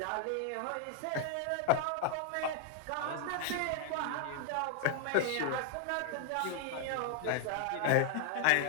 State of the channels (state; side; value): different; both; correlation 0.00